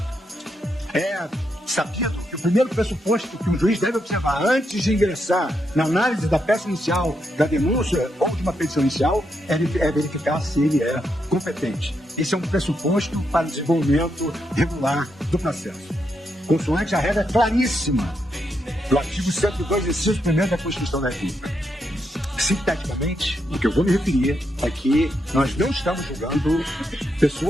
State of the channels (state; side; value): normal; both; correlation 0.81